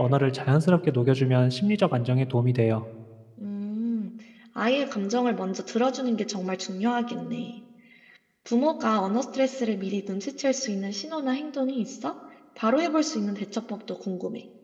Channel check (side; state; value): both; identical; correlation 1.00